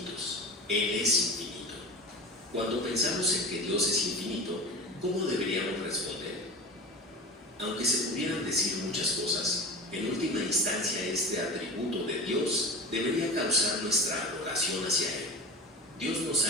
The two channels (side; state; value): both; normal; correlation 0.32